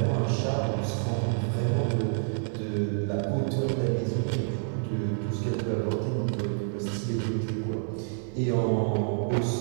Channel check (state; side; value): silent; left; 56 dB below the other